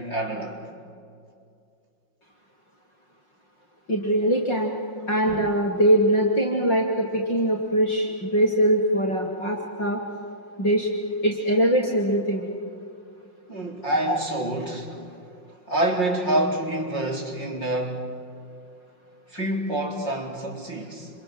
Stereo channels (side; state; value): right; late; 5.6 ms